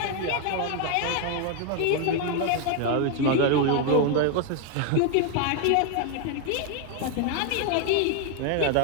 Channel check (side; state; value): both; different; correlation 0.01